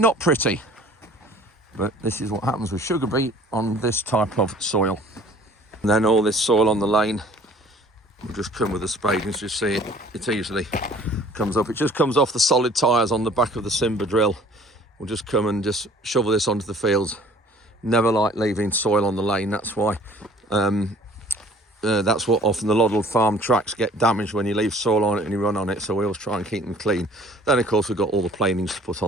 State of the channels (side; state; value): both; normal; correlation 0.52